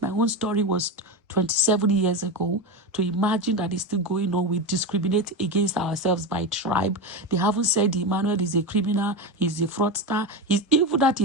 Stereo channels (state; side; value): normal; both; correlation 0.17